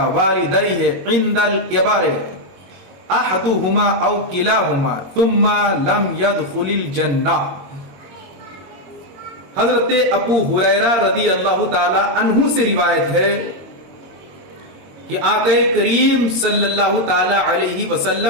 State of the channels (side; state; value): left; late; 22 ms